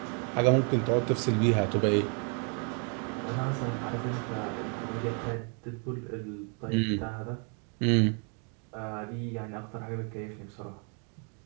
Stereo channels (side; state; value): left; quieter; 38.8 dB